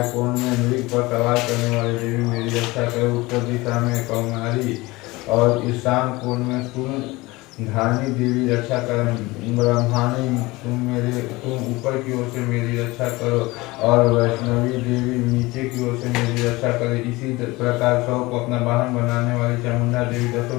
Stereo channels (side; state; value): right; quieter; 21.6 dB